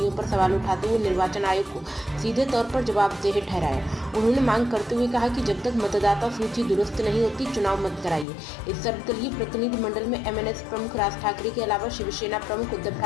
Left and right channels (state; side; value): drops out; right; at 8.2 s